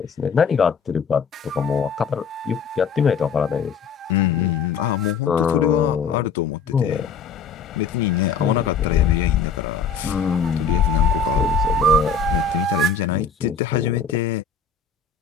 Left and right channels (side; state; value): right; quieter; 5.6 dB